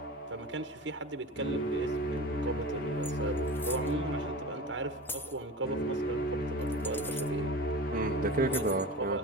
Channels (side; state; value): both; normal; correlation 0.33